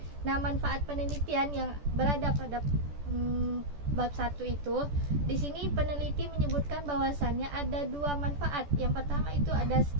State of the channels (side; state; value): left; late; 14 ms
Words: Nah, manfaat penelitian yang berada pada bab 1 itu, di sini peneliti menyebutkan bahwasannya ada 2 manfaat. Yang pertama itu ada